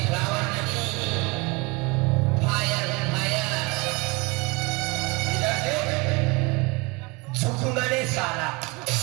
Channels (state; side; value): quieter; left; 26.7 dB